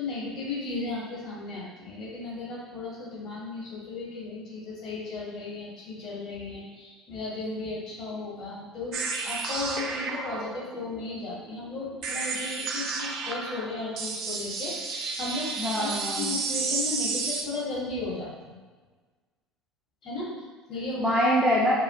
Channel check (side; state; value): both; normal; correlation 0.39